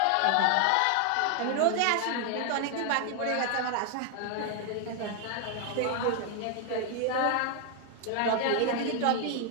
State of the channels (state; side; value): different; both; correlation 0.00